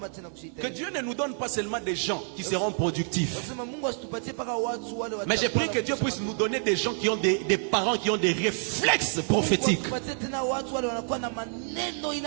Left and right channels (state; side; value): silent; left; 59 dB below the other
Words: Que Dieu ne nous donne pas seulement des gens qui seront productifs. Mais j'ai prié que Dieu puisse nous donner des gens qui ont des parents qui ont des réflexes prophétiques.